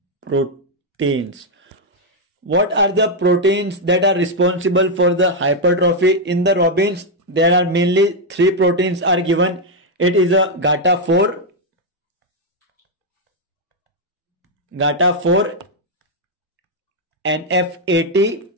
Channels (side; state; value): both; normal; correlation 0.00